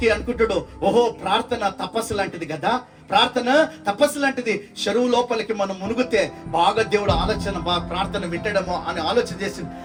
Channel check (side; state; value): both; identical; correlation 1.00